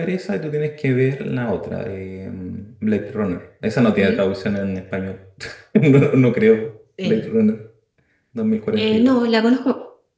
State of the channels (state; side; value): identical; both; correlation 1.00